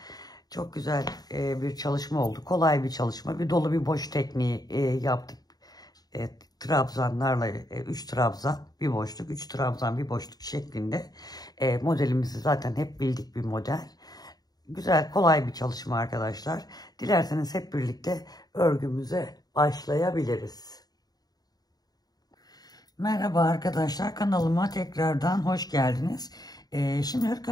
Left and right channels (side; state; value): right; late; 0.19 ms